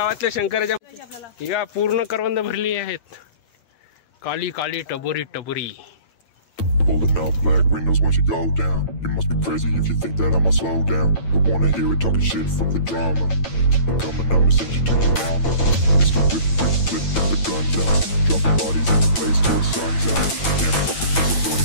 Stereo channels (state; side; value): late; right; 9.0 ms